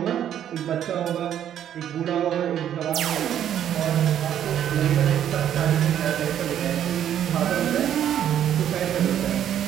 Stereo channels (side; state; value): left; quieter; 10.2 dB